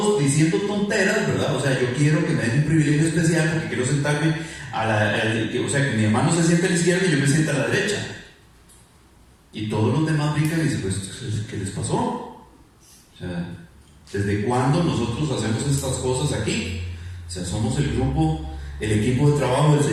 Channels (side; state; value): both; identical; correlation 1.00